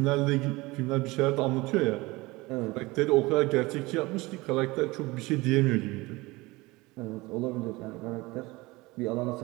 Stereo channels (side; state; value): left; quieter; 22.0 dB